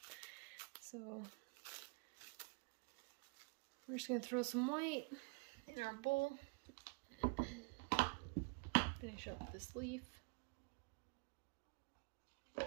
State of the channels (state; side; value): quieter; left; 32.6 dB